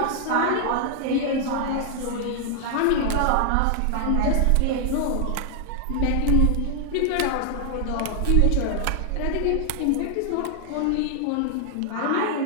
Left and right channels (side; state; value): both; different; correlation 0.00